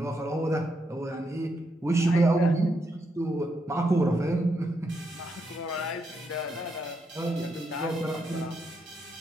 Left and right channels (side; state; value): both; normal; correlation 0.80